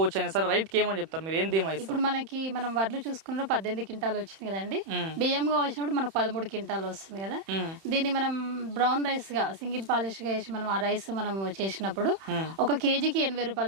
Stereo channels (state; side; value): late; left; 31 ms